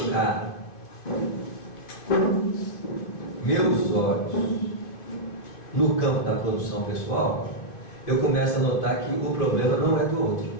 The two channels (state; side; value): late; right; 2.5 ms